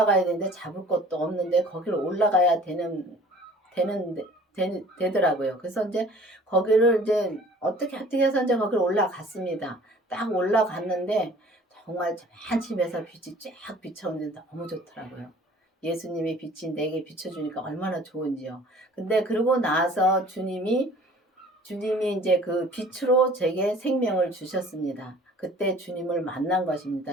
되는데 잡을 것도 없는데 거기를 올라가야 되는 되더라고요. 그래서 이제 거기를 이제 어떻게 해서 이제 거기를 올라갔습니다. 딱 올라갔는데 정말 맨 집에서 빛이 쫙 비춰오는데 너무 좋더라고요. 예수님의 빛이 내게 비춰주니까 얼마나 좋은지요. 근데 그러고 나서 주님이 이제 그 빛으로 제게 생명을 주셨습니다. 그때 주님을 만난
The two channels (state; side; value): normal; both; correlation 0.49